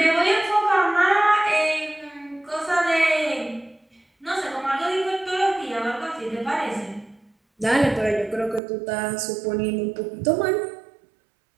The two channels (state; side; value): drops out; left; at 8.6 s